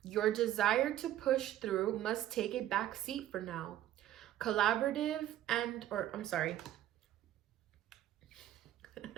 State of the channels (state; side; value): quieter; left; 12.6 dB